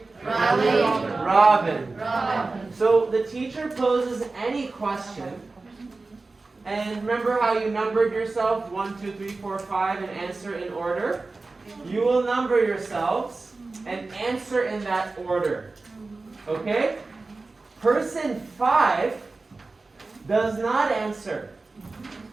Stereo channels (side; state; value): left; quieter; 3.6 dB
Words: Rally. Robin. Robin. So the teacher poses any question. And remember how you numbered yourself 1, 2, 3, 4, 5 and answer in order? You will number yourselves and answer in that order. Okay? Person 5 does not answer.